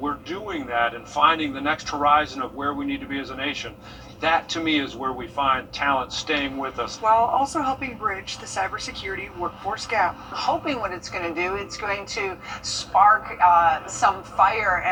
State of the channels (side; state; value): both; identical; correlation 1.00